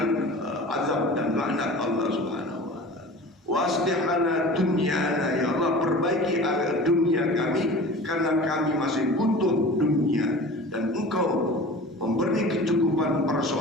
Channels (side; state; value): both; normal; correlation 0.38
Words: azab dan laknat Allah Subhanahu wa taala. Waslih lana dunyana, ya Allah, perbaiki dunia kami, karena kami masih butuh dunia, dan Engkau memberi kecukupan